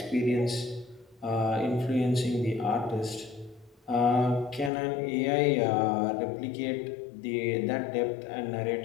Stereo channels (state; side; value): drops out; right; at 4.7 s